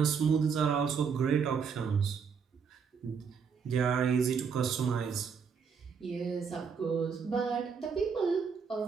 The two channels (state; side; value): quieter; left; 6.2 dB